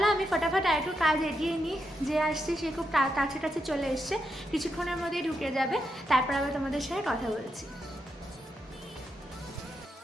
আমি ফটাফট আর একটু কাজ এগিয়ে নিই। যে আসছে সে খুব কাছে কাছে চলে এসছে, কিছুক্ষণের মধ্যেই ঢুকে যাবে। তারপর আবার তোমাদের সাথে কথা বলছি।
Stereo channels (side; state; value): both; normal; correlation 0.83